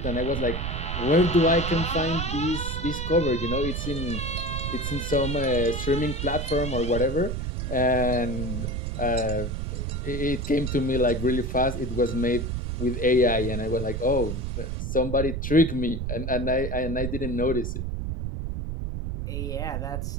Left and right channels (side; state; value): right; noise; rumble, 3 dB below the sound